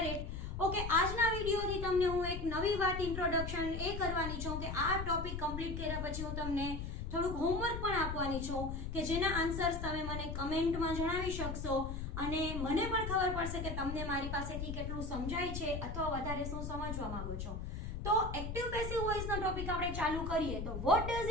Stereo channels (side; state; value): left; noise; rumble, 5 dB below the sound